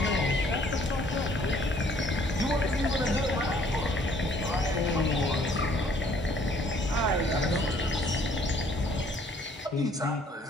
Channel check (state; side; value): normal; both; correlation 0.61